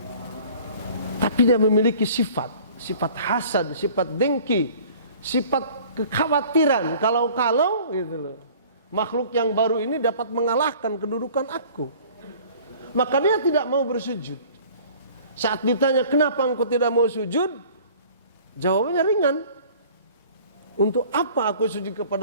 Tapi dia memiliki sifat hasad, sifat dengki, sifat kekhawatiran kalau gitu loh. Makhluk yang baru ini dapat mengalahkan kedudukan aku. Maka dia tidak mau bersujud. Saat ditanya, kenapa engkau tidak mau sujud? Jawabannya ringan. Untuk apa aku sujud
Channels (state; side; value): inverted; both; correlation -0.49